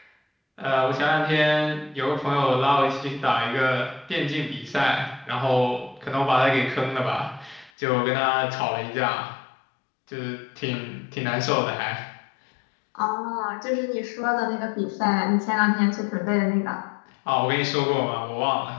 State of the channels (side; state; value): right; drops out; at 7.7 s